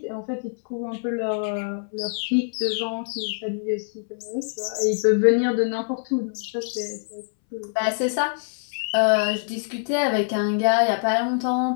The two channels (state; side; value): silent; right; 62 dB below the other